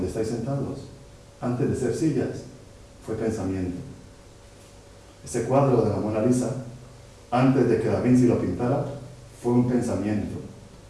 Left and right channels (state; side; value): identical; both; correlation 1.00